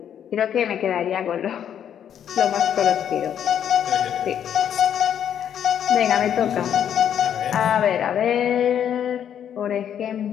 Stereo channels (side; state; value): right; quieter; 9.3 dB